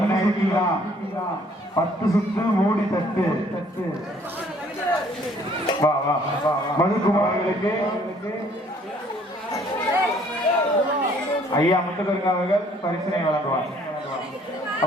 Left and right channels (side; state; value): both; normal; correlation 0.60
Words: 10 சுத்து 3 தட்டு. வா வா வா மதுக்குமார்களுக்கு ஐயா முத்துக்கருங்க அவர்கள் பரிசனை வழங்குவார்.